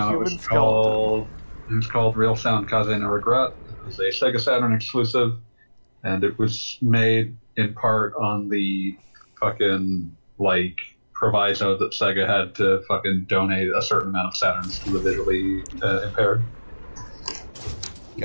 human It was called Real Sound Kaze no Regret. It was a Sega Saturn exclusive, and it was made in part on the fucking, like, proviso that Sega had to fucking donate a certain amount of Saturns to the visually impaired.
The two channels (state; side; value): inverted; both; correlation -1.00